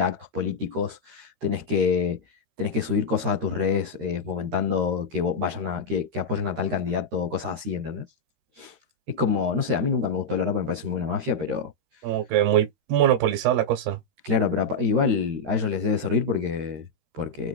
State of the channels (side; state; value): left; late; 13 ms